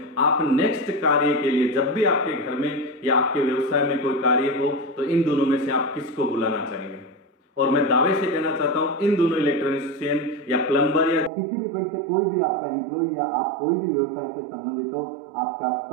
आप नेक्स्ट कार्य के लिए जब भी आपके घर में या आपके व्यवसाय में कोई कार्य हो, तो इन दोनों में से आप किसको बुलाना चाहेंगे। और मैं दावे से कहना चाहता हूं इन दोनों इलेक्ट्रीशियन या प्लम्बर या किसी भी फील्ड से कोई भी आपका एम्प्लॉय या आप कोई भी व्यवसाय से संबंधित हो, आपका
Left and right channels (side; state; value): left; drops out; at 11.3 s